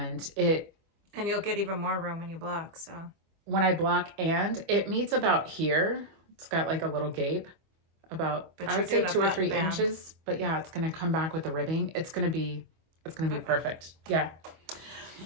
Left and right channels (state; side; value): late; left; 25 ms